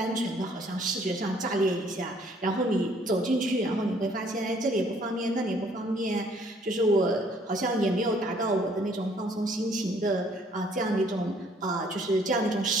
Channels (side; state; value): both; normal; correlation 0.62